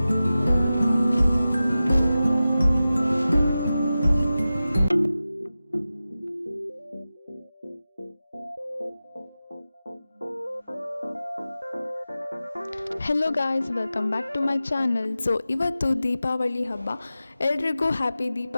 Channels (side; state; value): both; inverted; correlation -0.94